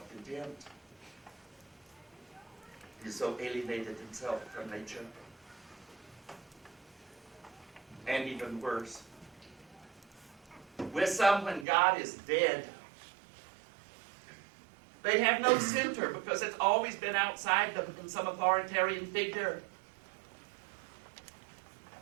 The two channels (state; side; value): drops out; left; at 11.7 s